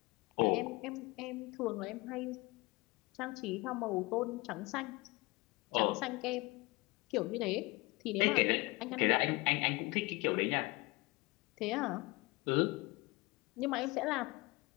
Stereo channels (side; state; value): right; quieter; 23.6 dB